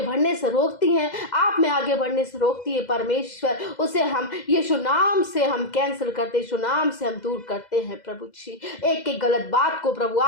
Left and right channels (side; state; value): right; late; 2.0 ms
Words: बढ़ने से रोकती है, आप में आगे बढ़ने से रोकती है परमेश्वर, उसे हम यीशु नाम से हम कैंसिल करते, यीशु नाम से हम दूर करते हैं प्रभु जी। एक एक गलत बात को प्रभु